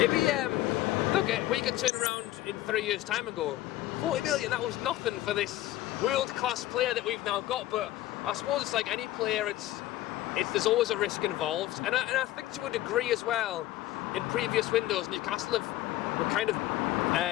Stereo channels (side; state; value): right; quieter; 15.1 dB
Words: he look, we could turn around in 3 years' time and go 40 million. That was nothing for this world-class player that we've now got. But I suppose it's like any player. There's always a risk involved, and I think to a degree as well. In previous windows, Newcastle were kind of